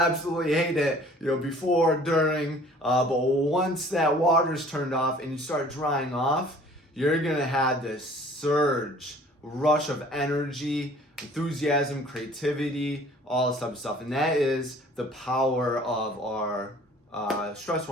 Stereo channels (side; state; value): both; normal; correlation 0.51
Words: hate it, before, during, but once that water's turned off and you start drying off, you're gonna have this rush of energy, enthusiasm, creativity, all this type of stuff. And that is the power of our stress